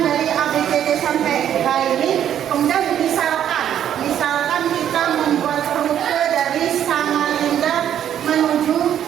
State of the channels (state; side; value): quieter; left; 10.1 dB